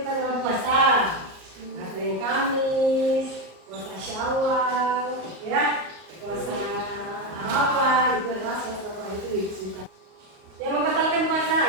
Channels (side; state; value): left; late; 38 ms